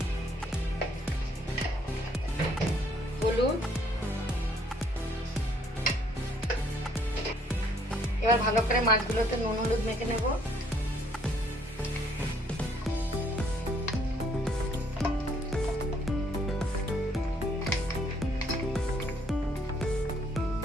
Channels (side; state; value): both; normal; correlation 0.65